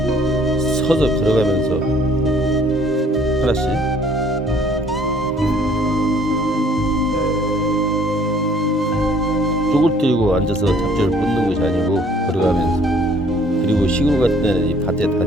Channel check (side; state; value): both; normal; correlation 0.58